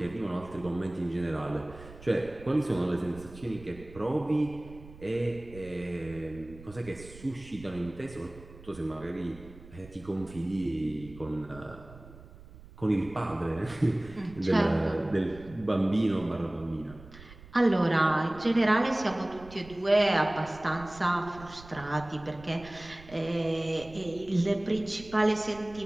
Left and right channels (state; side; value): noise; right; rumble, 19 dB below the sound